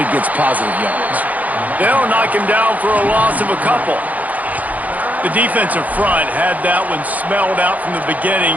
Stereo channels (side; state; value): left; late; 0.077 ms